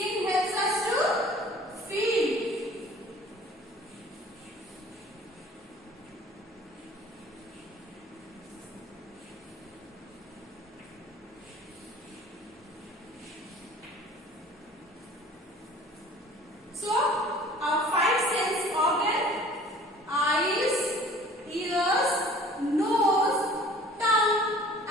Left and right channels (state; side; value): normal; both; correlation 0.49